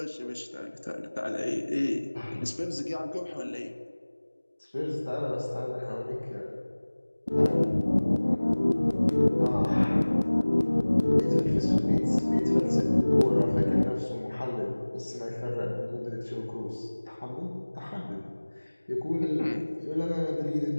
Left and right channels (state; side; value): inverted; both; correlation -1.00